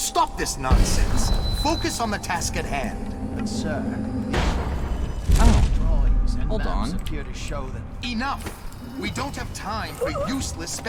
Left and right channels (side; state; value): both; identical; correlation 1.00